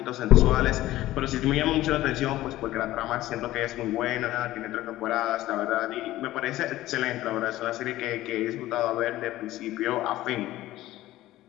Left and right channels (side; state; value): right; quieter; 15.7 dB